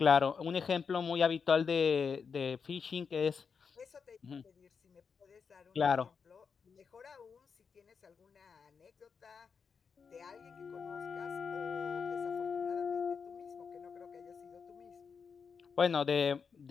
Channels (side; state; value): right; quieter; 5.9 dB